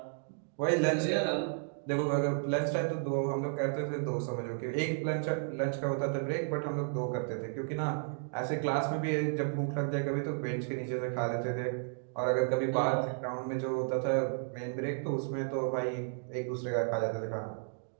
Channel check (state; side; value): silent; left; digital silence